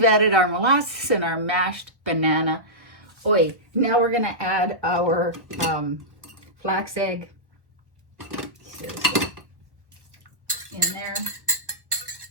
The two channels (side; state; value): left; late; 1.1 ms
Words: added our molasses and our mashed banana. Oi, now we're gonna add our flax egg in there.